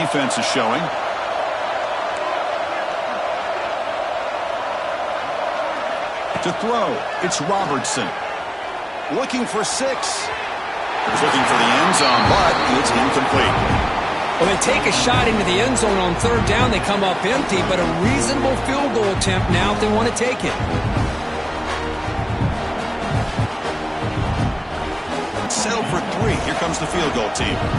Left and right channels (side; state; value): both; identical; correlation 1.00